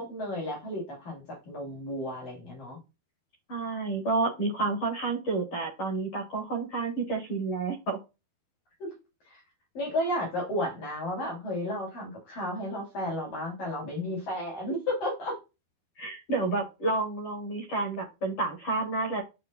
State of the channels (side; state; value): right; late; 12 ms